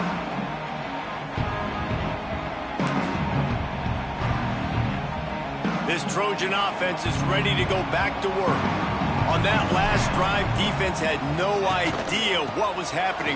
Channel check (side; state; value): both; identical; correlation 1.00